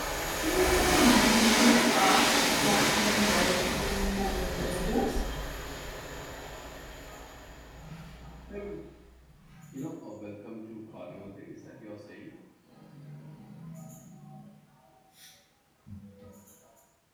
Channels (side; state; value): both; identical; correlation 1.00